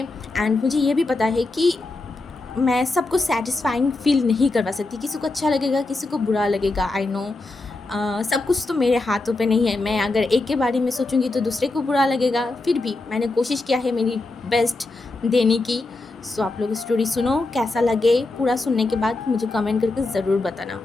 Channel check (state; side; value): quieter; right; 3.2 dB